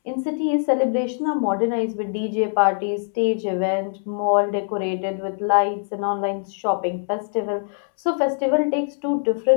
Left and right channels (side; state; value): right; silent; 64 dB below the other